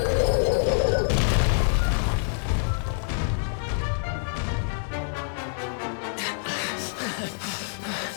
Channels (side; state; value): right; silent; 61 dB below the other